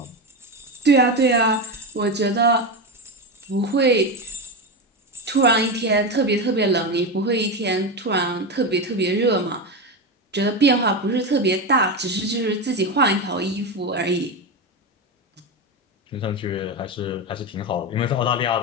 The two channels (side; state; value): both; normal; correlation 0.16